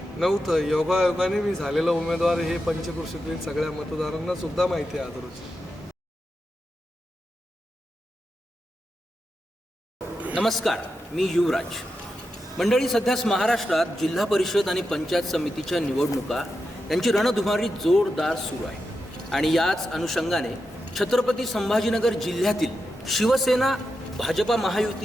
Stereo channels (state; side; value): normal; both; correlation 0.88